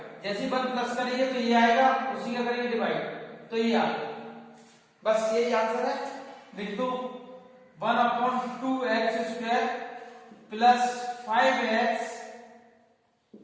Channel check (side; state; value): both; identical; correlation 1.00